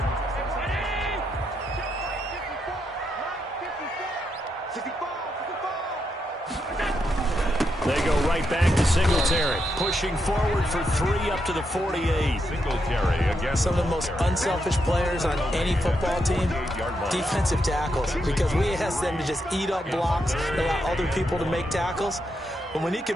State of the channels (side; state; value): both; normal; correlation 0.81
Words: They go right back to Singletary, pushing forward for 3 up to the 48. Singletary against some of the most unselfish players on any football team, defensive tackles, because we ask them to just eat up blocks, allow other people to make tackles. But when he